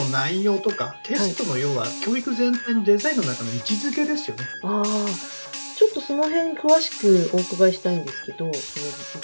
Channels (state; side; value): inverted; both; correlation -1.00